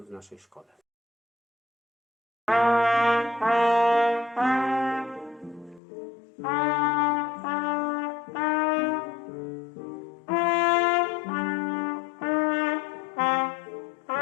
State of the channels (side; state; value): right; drops out; at 5.8 s